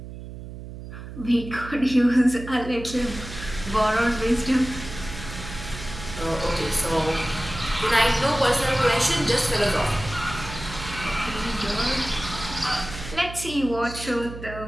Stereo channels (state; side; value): noise; right; hum, 11 dB below the sound